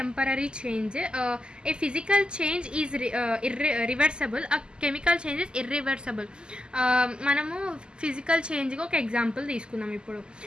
change. A physical change is reversible, chemical change is irreversible. మనము ఫిజికల్ చేంజ్కి ఒక ఎగ్జాంపుల్ తీసుకుందాం. ఇప్పుడు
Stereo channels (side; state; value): left; late; 0.048 ms